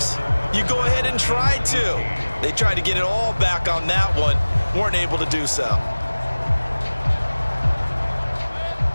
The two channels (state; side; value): inverted; both; correlation -1.00